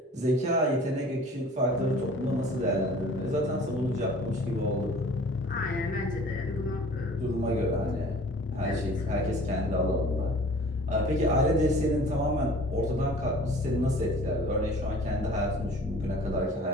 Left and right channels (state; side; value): normal; both; correlation 0.47